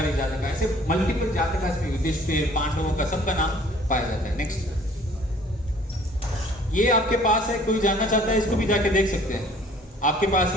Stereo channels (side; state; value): both; normal; correlation 0.54